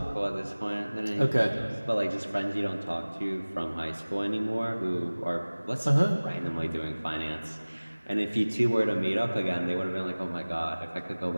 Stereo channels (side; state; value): both; inverted; correlation -1.00